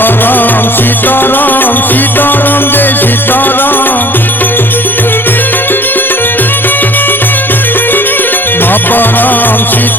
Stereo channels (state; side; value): normal; both; correlation 0.50